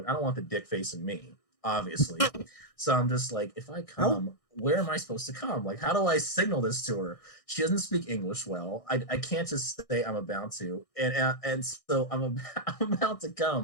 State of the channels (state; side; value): late; right; 1.6 ms